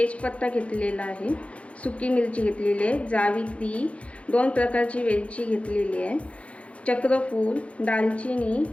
घेतलेला आहे, सुकी मिरची घेतलेली आहे, जावित्री, 2 प्रकारची वेलची घेतलेली आहे, चक्रफूल, दालचिनी,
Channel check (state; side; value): late; right; 0.062 ms